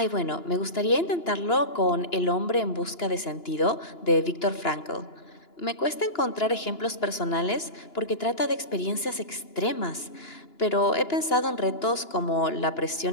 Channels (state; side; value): late; right; 2.9 ms